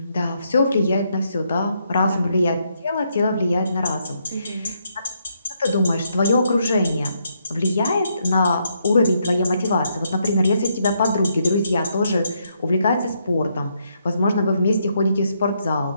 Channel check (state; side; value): inverted; both; correlation -0.76